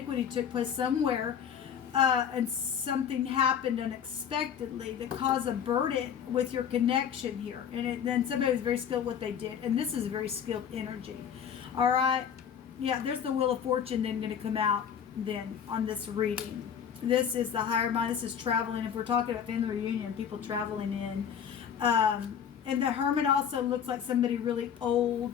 took place somewhere, and something happened unexpectedly that caused a burden with your connection here. And then somebody was very skilled what they did. And this is very skilled energy. All right. Yeah, there's the Wheel of Fortune then going to come out then on this reading. This is the higher mind. This is traveling. If we're talking about family reunion, people traveling in. And the Hermit also looks like somebody really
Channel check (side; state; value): right; quieter; 8.2 dB